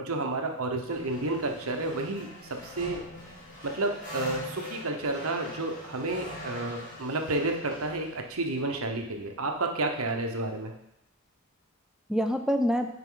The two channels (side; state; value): both; normal; correlation 0.07